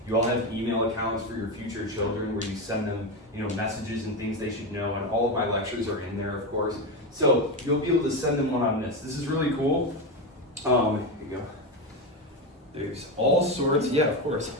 You all have email accounts for your future children where you send them, messages and things they should know, and all of my lectures are in there, of course. So you'll be able to send them one on this. This is really cool. Here you go. There's all sorts,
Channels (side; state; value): both; normal; correlation 0.14